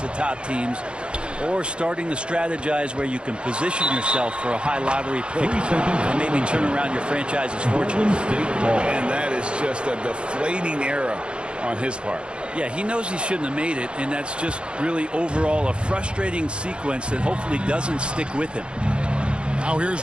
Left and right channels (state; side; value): late; left; 0.055 ms